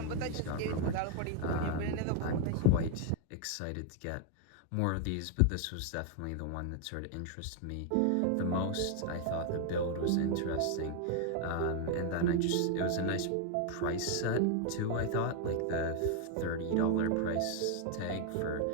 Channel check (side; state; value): both; different; correlation 0.00